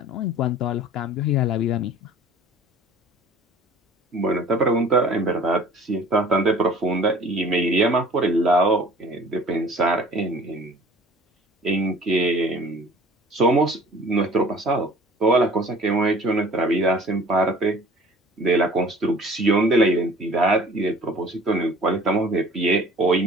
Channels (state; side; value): normal; both; correlation 0.48